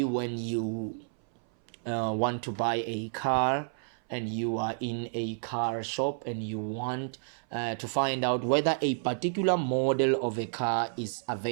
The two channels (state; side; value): silent; left; 58 dB below the other